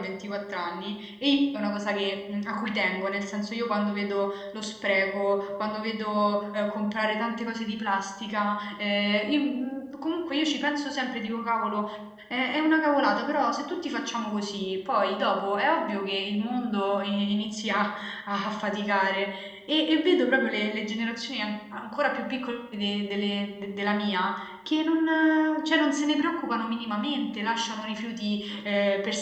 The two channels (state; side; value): identical; both; correlation 1.00